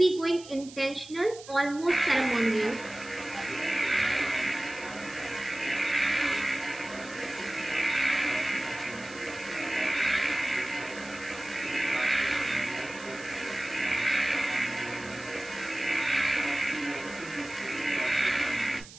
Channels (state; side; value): noise; right; hiss, 17 dB below the sound